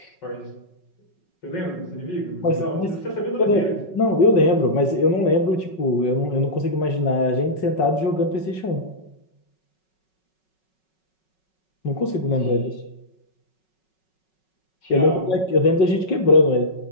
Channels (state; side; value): late; right; 5.4 ms